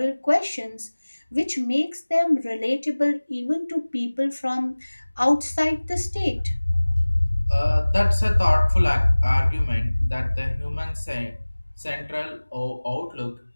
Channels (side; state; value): both; inverted; correlation -1.00